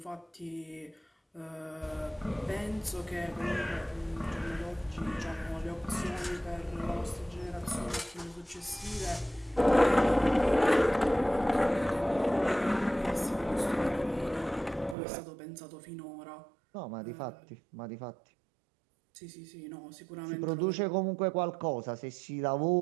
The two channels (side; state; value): left; drops out; at 15.0 s